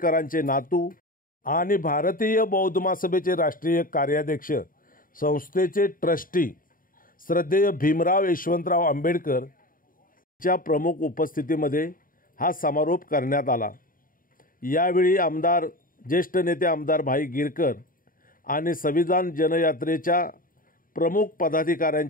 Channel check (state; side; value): late; right; 0.41 ms